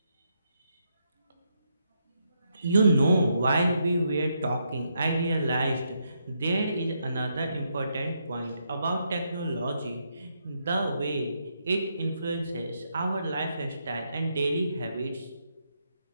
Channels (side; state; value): both; inverted; correlation -0.79